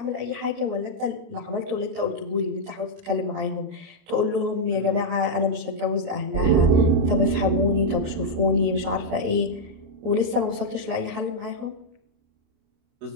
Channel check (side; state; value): left; late; 29 ms